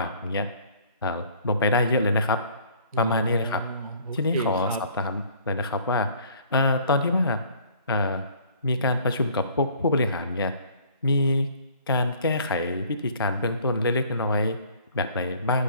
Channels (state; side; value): inverted; both; correlation -0.55